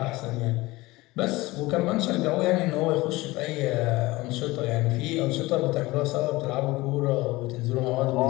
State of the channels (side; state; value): right; quieter; 20.4 dB